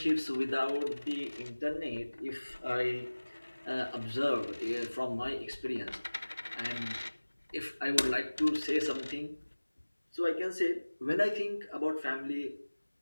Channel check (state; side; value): inverted; both; correlation -1.00